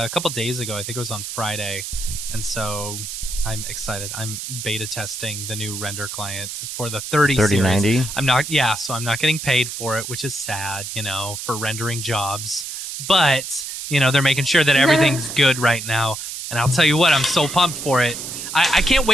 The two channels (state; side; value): noise; right; hiss, 7 dB below the sound